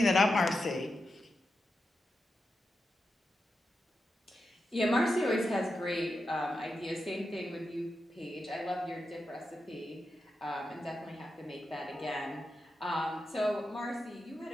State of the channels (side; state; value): both; normal; correlation 0.89